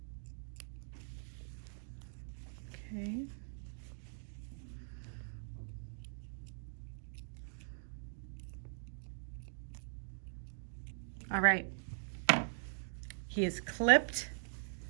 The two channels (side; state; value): left; silent; digital silence